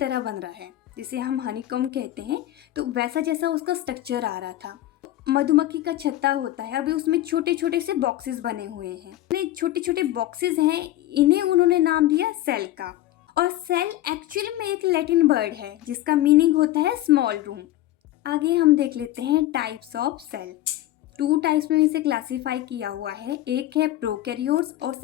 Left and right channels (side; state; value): right; quieter; 14.7 dB